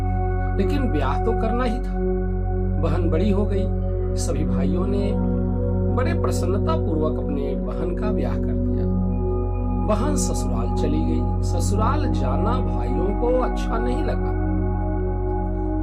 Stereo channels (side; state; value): both; identical; correlation 1.00